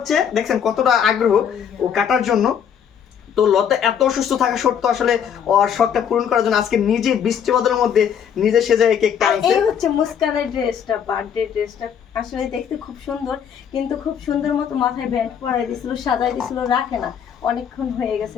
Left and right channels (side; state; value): right; quieter; 8.2 dB